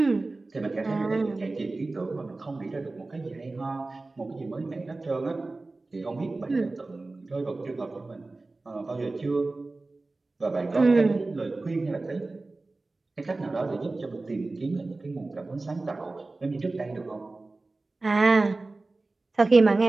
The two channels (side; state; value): left; quieter; 3.3 dB